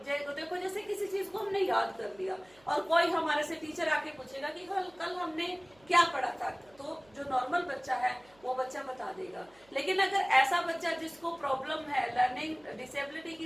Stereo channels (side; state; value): right; noise; hum, 29 dB below the sound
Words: देखो जैसे किसी चीज को हमने याद कर लिया और कोई हमारे से टीचर आके पूछेगा कि कल हमने क्या पढ़ा था, तो जो नॉर्मल बच्चा है वो बच्चा बता देगा। लेकिन अगर ऐसा बच्चा जिसको प्रॉब्लम है, लर्निंग डिसेबिलिटी की